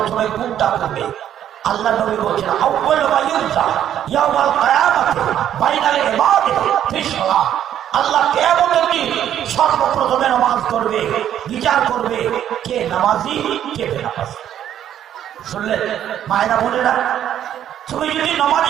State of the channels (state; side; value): quieter; left; 10.6 dB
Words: কোনটা করবে? আল্লাহ নবী বলছেন, আউয়ালু মা ইউযা ইয়াউমাল কিয়ামাতি বাইনাল ইবাদি ফিস সালাত। আল্লাহ কিয়ামতের দিন সর্বপ্রথমে নামাজ করবে, বিচার করবে কে নামাজি কে বেনামাজি। শুনলেন মায়েরা বোনেরা, তুমি যদি